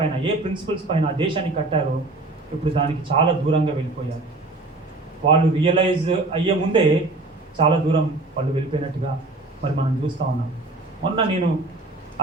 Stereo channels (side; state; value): left; quieter; 3.1 dB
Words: ఏ ప్రిన్సిపల్స్ పైన ఆ దేశాన్ని కట్టారో ఇప్పుడు దానికి చాలా దూరంగా వెళ్ళిపోయారు. వాళ్ళు రియలైజ్ అయ్యే ముందే చాలా దూరం వాళ్ళు వెళ్ళిపోయినట్టుగా మరి మనం చూస్తూ ఉన్నాం. మొన్న నేను